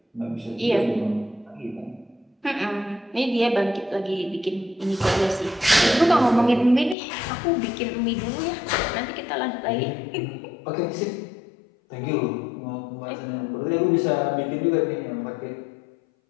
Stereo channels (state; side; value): drops out; right; at 7.0 s